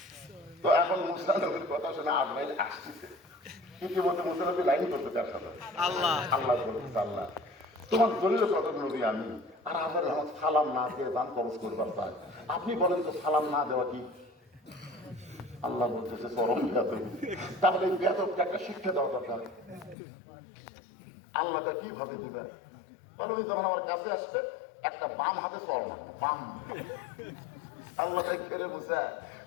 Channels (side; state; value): right; drops out; at 20.0 s